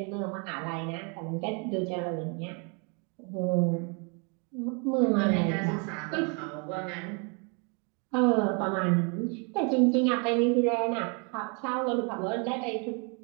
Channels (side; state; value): left; quieter; 35.1 dB